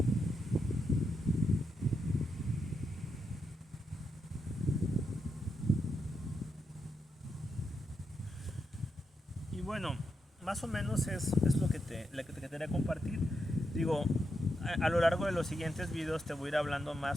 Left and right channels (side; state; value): both; normal; correlation 0.84